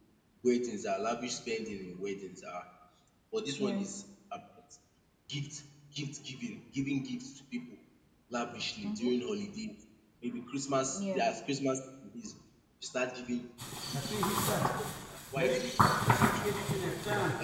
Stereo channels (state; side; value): identical; both; correlation 1.00